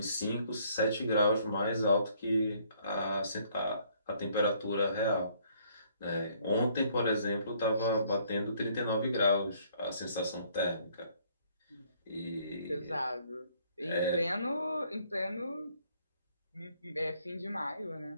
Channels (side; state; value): both; inverted; correlation -0.64